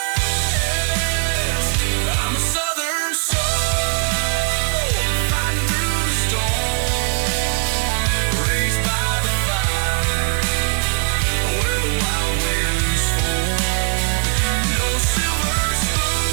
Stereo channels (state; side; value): silent; left; digital silence